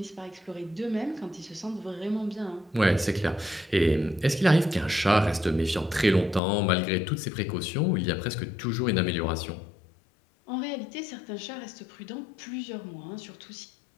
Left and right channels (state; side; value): drops out; right; at 6.4 s